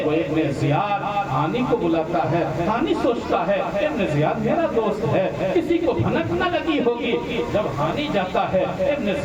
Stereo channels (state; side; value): identical; both; correlation 1.00